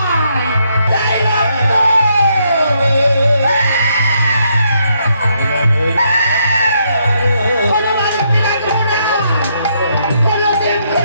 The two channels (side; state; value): both; inverted; correlation -0.75